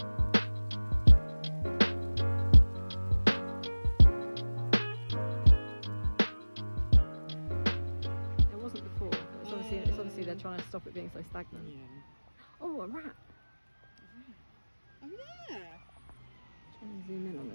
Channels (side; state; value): both; inverted; correlation -1.00